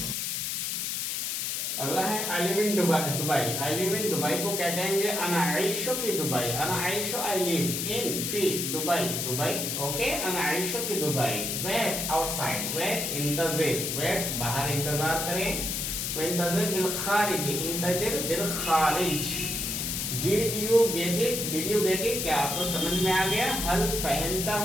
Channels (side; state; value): left; noise; hiss, 1 dB below the sound